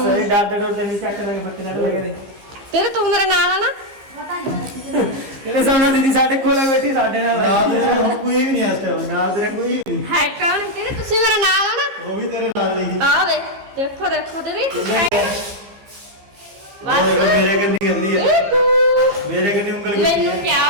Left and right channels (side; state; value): left; late; 15 ms